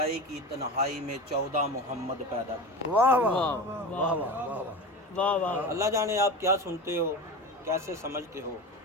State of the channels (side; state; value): both; normal; correlation 0.28